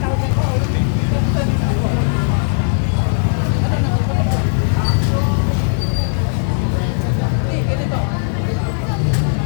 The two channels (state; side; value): silent; right; 68 dB below the other